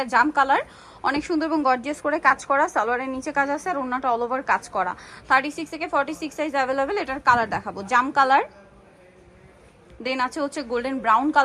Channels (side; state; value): both; identical; correlation 1.00